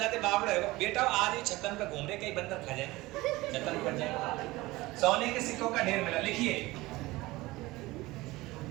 बावड़े हो बेटा, आज ही छतन पे घूम रहे, कई बंदर खा जाए, छतन पर जाए। सोने के सिक्कों का ढेर मिला, लिखिए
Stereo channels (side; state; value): left; quieter; 20.0 dB